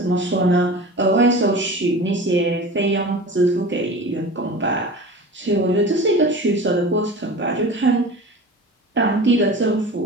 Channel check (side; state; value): both; normal; correlation 0.35